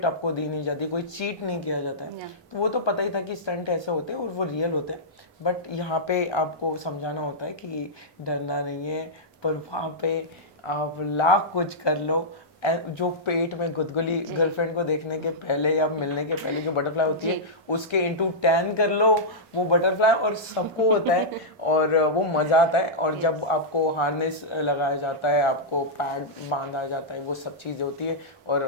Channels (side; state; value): both; normal; correlation -0.12